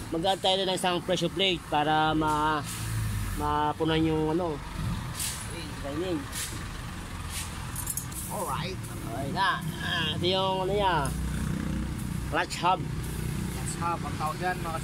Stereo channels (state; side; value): identical; both; correlation 1.00